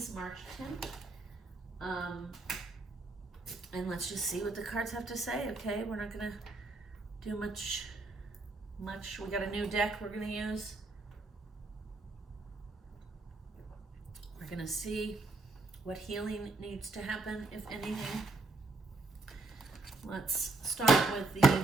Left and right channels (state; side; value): quieter; left; 3.4 dB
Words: March 10th. And let's just see what the cards have to say, okay? We're not going to do much. We got a new deck we're going to use. We're going to see what healing needs to happen, if anything. Let's start with the